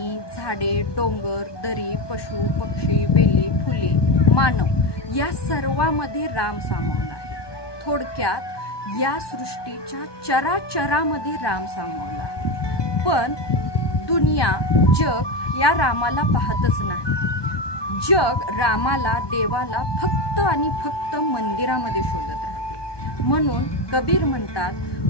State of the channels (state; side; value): late; right; 1.2 ms